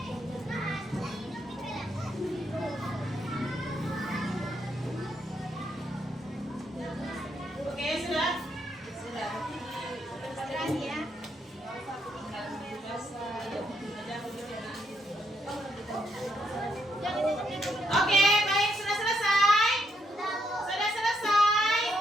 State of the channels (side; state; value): both; normal; correlation 0.76